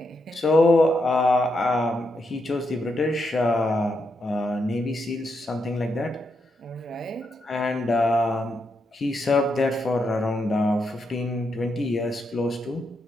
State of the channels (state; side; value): normal; both; correlation 0.82